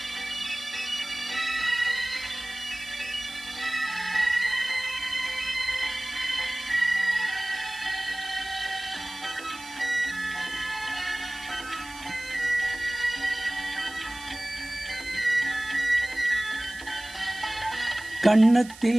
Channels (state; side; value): noise; right; hiss, 17 dB below the sound